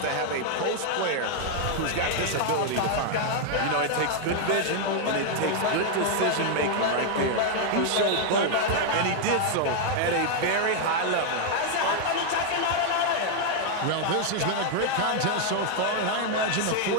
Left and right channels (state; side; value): different; both; correlation 0.00